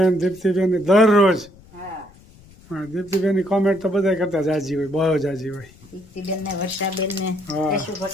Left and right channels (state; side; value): noise; left; rumble, 24 dB below the sound